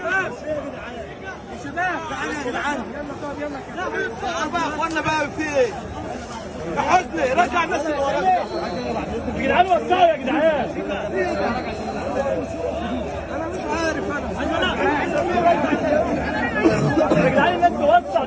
شباب تعالوا يا جدعان، يلا طب يلا بقى يا اخوانا بقى في ايه؟ يا حسني رجع الناس اللي وراك يا جدعان، وسعوا يا جدعان. انا مش عارف يا جدعان الناس توسع.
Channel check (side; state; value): both; identical; correlation 1.00